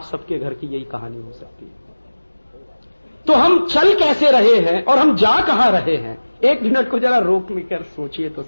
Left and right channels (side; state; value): both; inverted; correlation -1.00